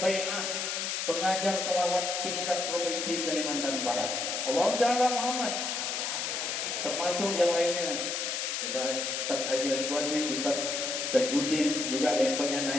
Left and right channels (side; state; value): left; noise; hiss, 1 dB below the sound